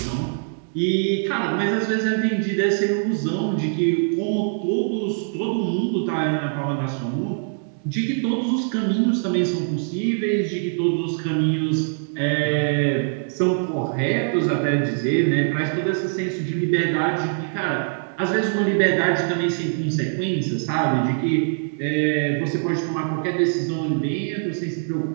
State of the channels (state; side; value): silent; left; digital silence